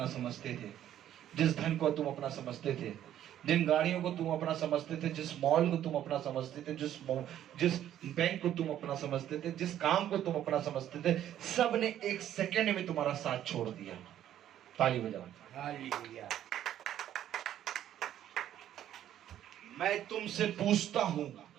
समझते थे, जिस धन को तुम अपना समझते थे, जिन गाड़ियों को तुम अपना समझते थे, जिस मॉल को तुम अपना समझते थे, जिस बैंक को तुम अपना समझते थे, जिस काम को तुम अपना समझते थे, सब ने एक सेकंड में तुम्हारा साथ छोड़ दिया। ताली बजाओ। हालेलुया। मैं तुमसे पूछता हूं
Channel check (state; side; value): quieter; left; 11.4 dB